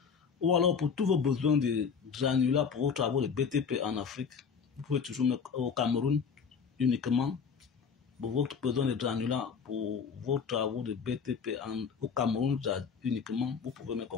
Ou alors, pour tous vos besoins de granulats pour vos travaux de BTP en Afrique, vous pouvez toujours au Cameroun uniquement. Pour votre besoin de granulats pour vos travaux de BTP au Cameroun uniquement, vous pouvez me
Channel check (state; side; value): quieter; right; 6.1 dB